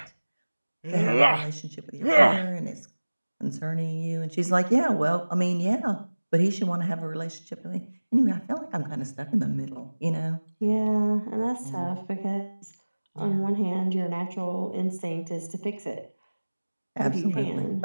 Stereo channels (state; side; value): inverted; both; correlation -1.00